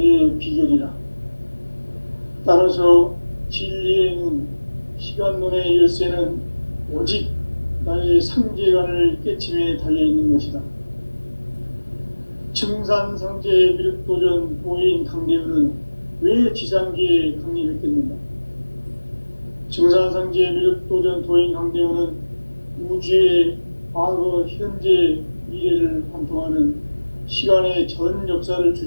비결이라. 따라서 진리의 눈, 시간론의 열쇠는 오직 나의 상제관을 깨침에 달려있는 것이다. 증산상제 미륵도전 도인 강대훈은 왜 지상계에 강림했겠는가? 증산상제 미륵도전 도인 강대훈은 우주의 과거, 현재, 미래를 관통하는 시간의 전 역사를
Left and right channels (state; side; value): inverted; both; correlation -1.00